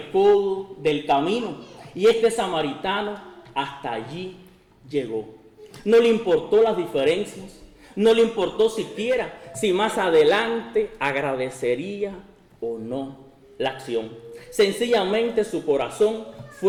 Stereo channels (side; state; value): both; identical; correlation 1.00